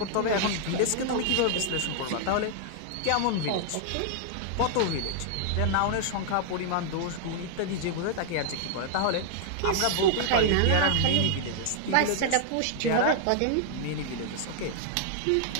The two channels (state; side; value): different; both; correlation 0.00